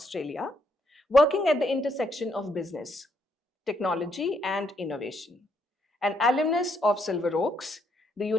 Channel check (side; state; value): both; normal; correlation 0.74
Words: working at the intersection of business, technology, and innovation. An alumnus of Silver Oaks, the